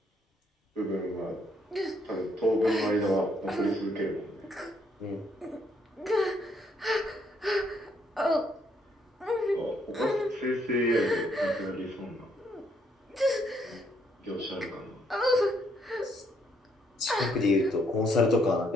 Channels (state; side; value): normal; both; correlation 0.71